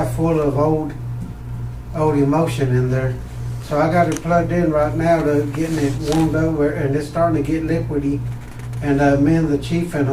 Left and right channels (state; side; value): identical; both; correlation 1.00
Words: full of old emulsion in there. So I got it plugged in right now to getting it warmed over, and it's starting to get liquidy. And me and the chief and